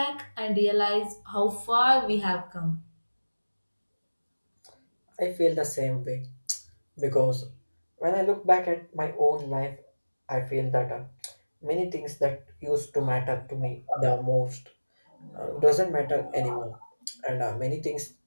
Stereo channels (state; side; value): inverted; both; correlation -1.00